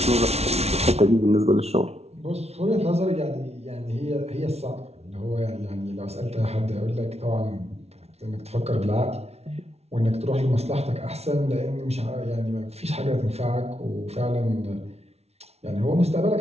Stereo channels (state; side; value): late; left; 0.31 ms